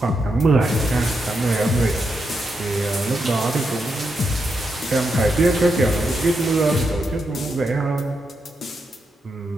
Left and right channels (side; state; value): both; normal; correlation 0.83